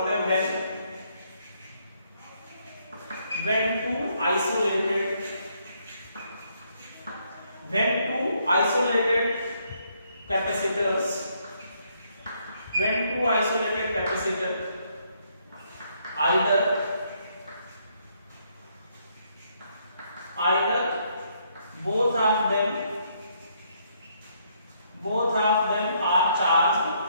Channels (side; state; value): both; inverted; correlation -0.72